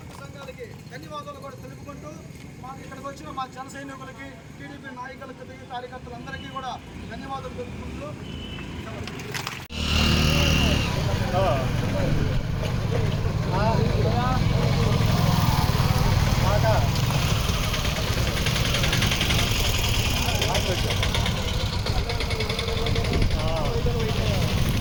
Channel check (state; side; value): identical; both; correlation 1.00